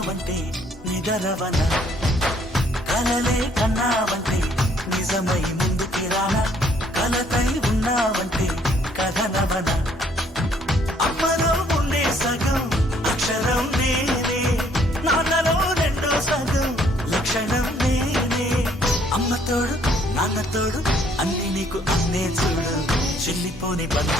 నిదరవన కలలే కన్నావంటే నిజమై ముందుకి రానా కలతై ఉన్నావంటే కథనవన అమ్మలో ఉండే సగం అక్షరం నేనే నాన్నలో రెండో సగం లక్షణం నేనే అమ్మతోడు నాన్నతోడు అన్ని నీకు అన్నే చూడు చెల్లిపోని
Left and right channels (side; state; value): both; normal; correlation 0.64